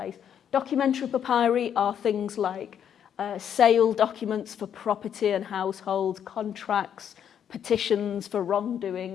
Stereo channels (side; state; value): right; quieter; 8.9 dB